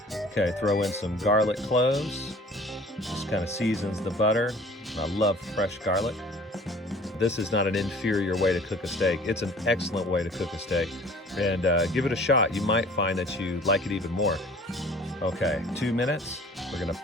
Okay, throw in some garlic cloves. Just kind of seasons the butter. I love fresh garlic. This is not an inferior way to cook a steak. It's an excellent way to cook a steak. And give it a shot. You might find that you like it even more. Okay, 2 minutes. We're gonna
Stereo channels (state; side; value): normal; both; correlation 0.49